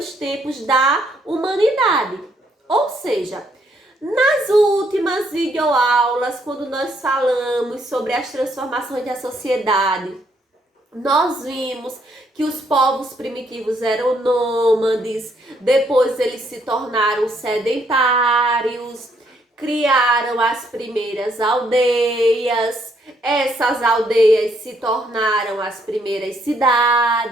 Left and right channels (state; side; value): normal; both; correlation 0.71